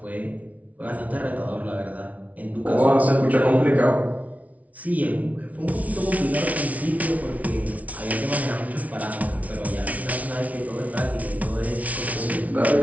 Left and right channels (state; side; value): late; left; 0.069 ms